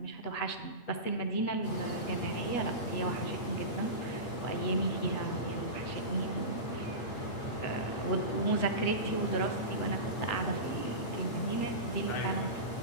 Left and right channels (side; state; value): right; late; 8.5 ms